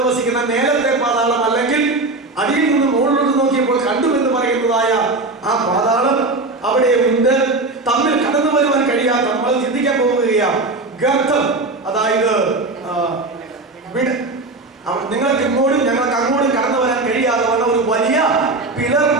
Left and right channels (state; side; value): quieter; left; 3.2 dB